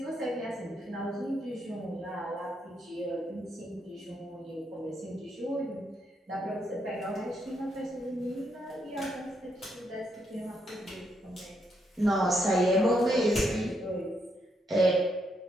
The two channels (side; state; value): both; normal; correlation 0.78